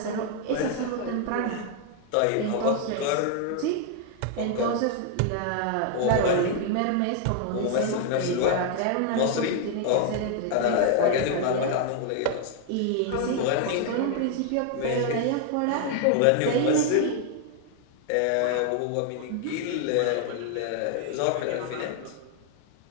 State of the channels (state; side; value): different; both; correlation 0.00